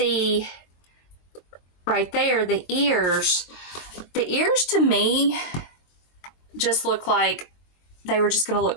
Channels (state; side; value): late; right; 22 ms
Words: right there, the ears to me just look like they were just going to